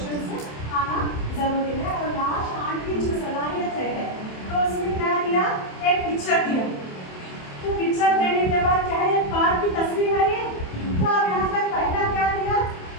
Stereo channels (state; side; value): late; right; 27 ms